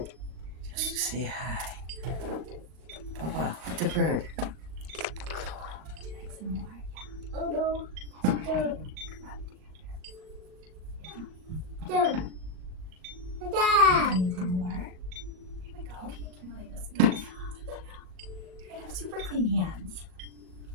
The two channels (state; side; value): late; left; 38 ms